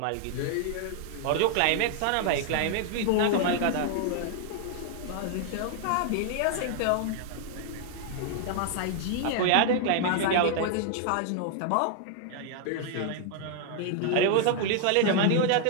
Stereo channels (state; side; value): different; both; correlation 0.00